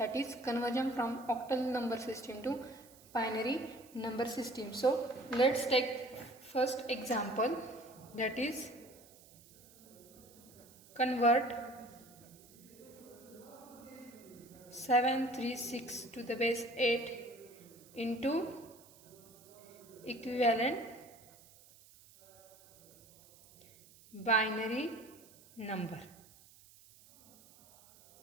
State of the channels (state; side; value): noise; right; hiss, 23 dB below the sound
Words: is conversion from octal number system to binary number system. So let's take first example, that is convert 736 to the base 8 into equivalent binary number.